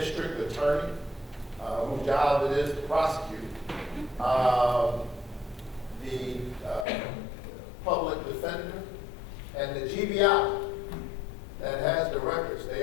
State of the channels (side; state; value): right; drops out; at 6.9 s